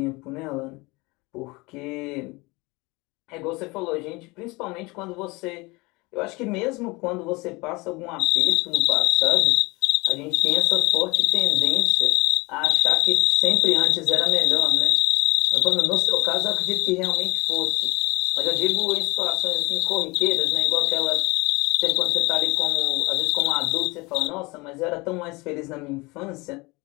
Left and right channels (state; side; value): quieter; right; 24.4 dB